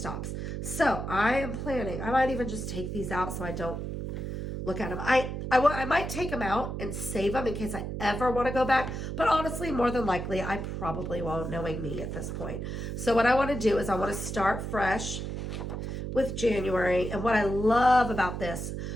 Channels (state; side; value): noise; right; hum, 5 dB below the sound